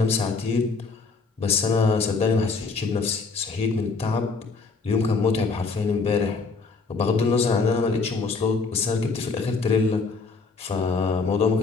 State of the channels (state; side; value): quieter; right; 4.4 dB